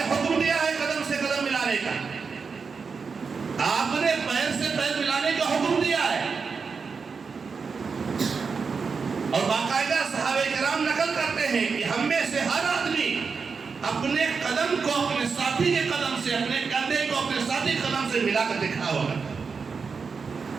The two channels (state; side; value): quieter; left; 5.3 dB